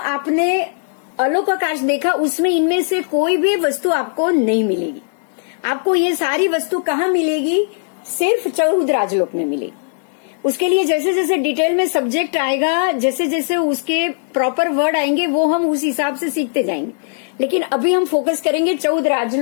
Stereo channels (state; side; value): silent; right; 67 dB below the other